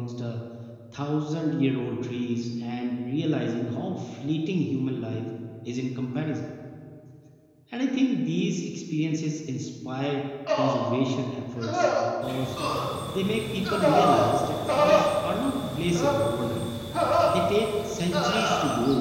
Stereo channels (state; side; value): identical; both; correlation 1.00